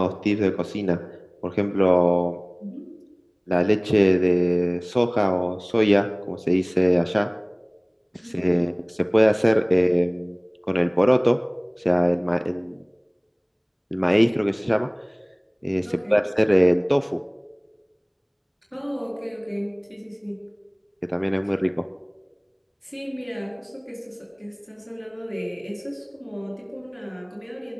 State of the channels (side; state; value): both; identical; correlation 1.00